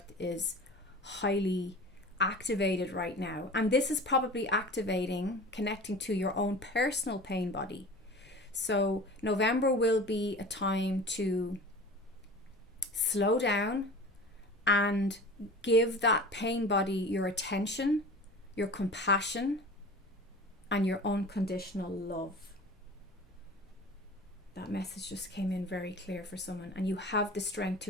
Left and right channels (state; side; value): normal; both; correlation 0.38